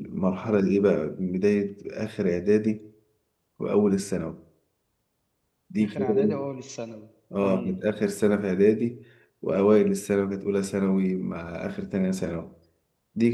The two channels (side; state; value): both; identical; correlation 1.00